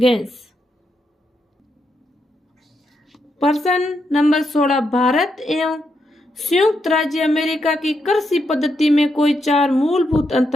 प्रश्न नंबर 16, भारत एवं संयुक्त राज्य अमेरिका की कृषि पद्धति में कोई 4 मूलभूत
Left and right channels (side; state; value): both; normal; correlation 0.81